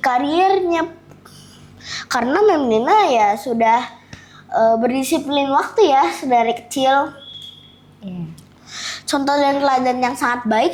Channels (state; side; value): identical; both; correlation 1.00